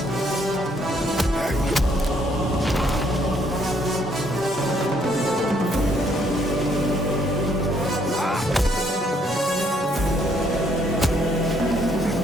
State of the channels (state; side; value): normal; both; correlation 0.69